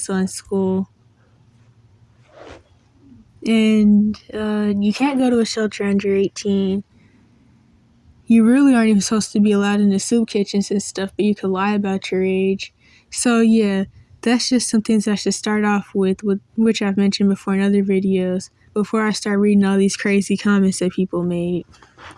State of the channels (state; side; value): identical; both; correlation 1.00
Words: on school. And you can't go to a shelter under 18. You really aren't even supposed to be allowed in the soup kitchens and stuff, but you could lie about your age. So yeah, that's just some things I should start off with which I've mentioned before in other videos, before I start reading all these crazy comments that people made.